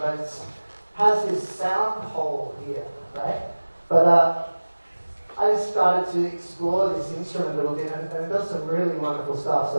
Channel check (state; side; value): inverted; both; correlation -1.00